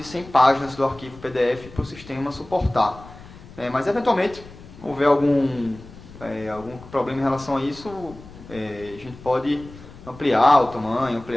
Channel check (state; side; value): noise; left; rumble, 18 dB below the sound